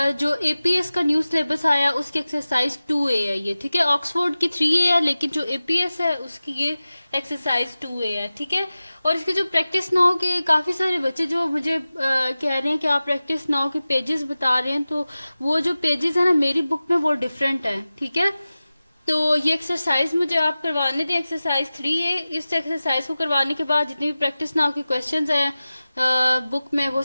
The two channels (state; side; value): inverted; both; correlation -0.96